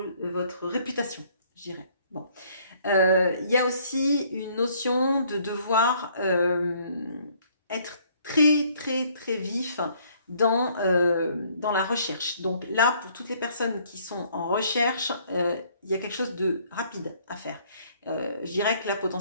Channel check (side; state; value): both; inverted; correlation -0.62